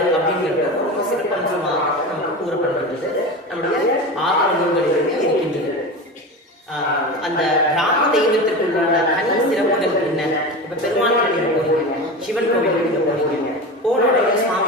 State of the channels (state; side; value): normal; both; correlation 0.27